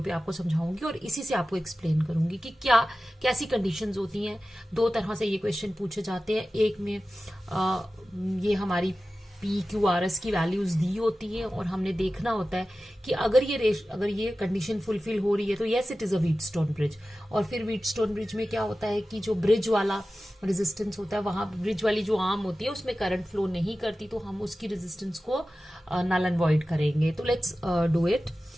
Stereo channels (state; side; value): normal; both; correlation 0.95